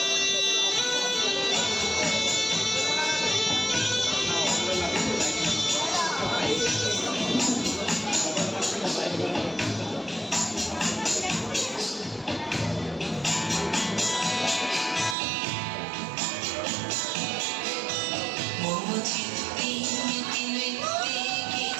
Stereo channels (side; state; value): left; drops out; at 15.2 s